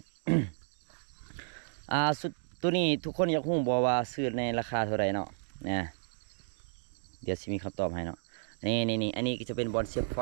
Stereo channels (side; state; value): left; silent; digital silence